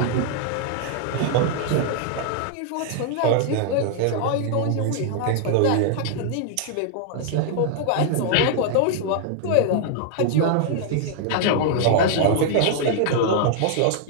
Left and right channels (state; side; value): different; both; correlation -0.01